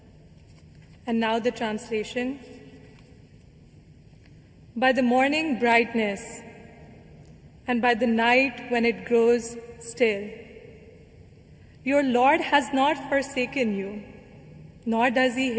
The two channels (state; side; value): identical; both; correlation 1.00